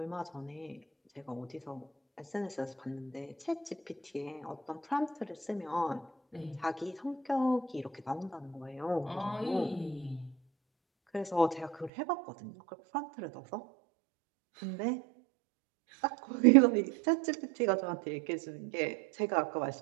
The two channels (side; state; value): left; drops out; at 11.9 s